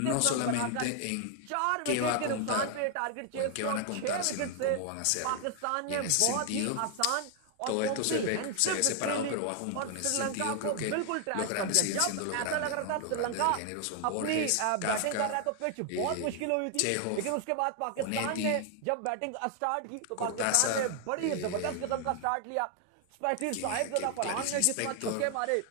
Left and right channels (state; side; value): different; both; correlation 0.00